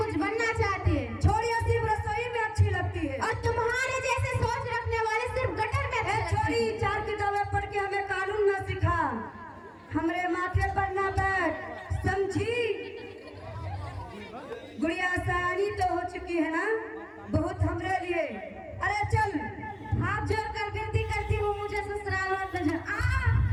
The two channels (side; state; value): both; identical; correlation 1.00